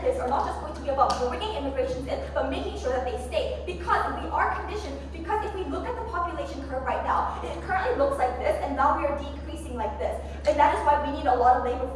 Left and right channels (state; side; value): identical; both; correlation 1.00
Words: are not just going to be about bringing immigrations in, but making sure that they stay. Because we are conditioned, because if we look at the population curve right now, it currently looks like this, and now we are decreasing like this. And that is why we need a lot of labor